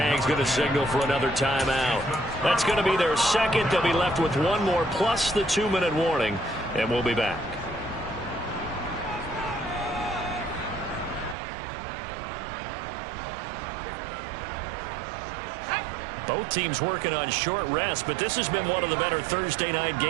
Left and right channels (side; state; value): left; drops out; at 11.4 s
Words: going to signal for another timeout. That's going to be their second. They'll be left with 1 more plus the 2-minute warning. And we'll be back. Both teams working on short rest, but this has been one of the better Thursday night